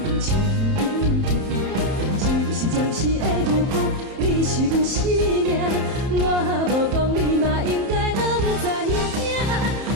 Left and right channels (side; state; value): left; late; 31 ms